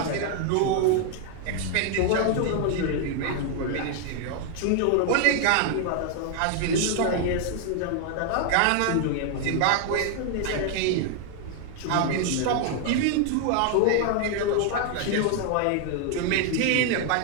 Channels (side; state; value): both; different; correlation 0.00